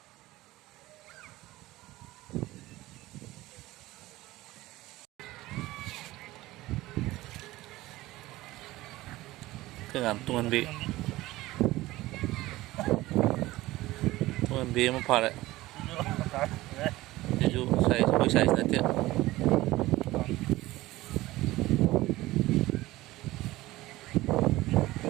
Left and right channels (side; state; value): left; quieter; 17.9 dB